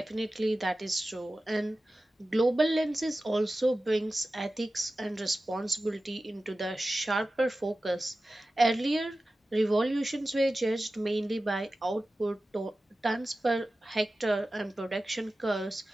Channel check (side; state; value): both; normal; correlation 0.95